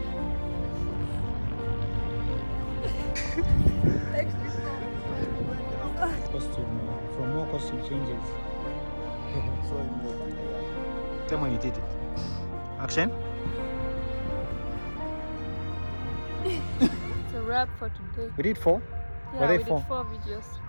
Costume, from more costume changes. Tell me when you did it. Action. It's a wrap for today. We did 4? Yeah, Were they we 4? did 4 videos.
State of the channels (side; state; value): both; inverted; correlation -1.00